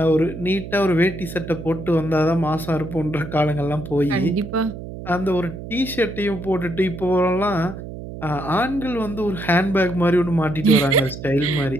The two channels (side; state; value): right; noise; hum, 10 dB below the sound